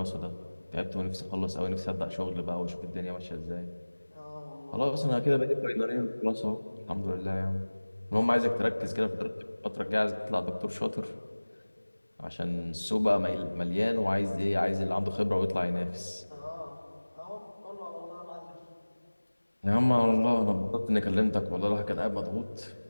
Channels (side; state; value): both; inverted; correlation -1.00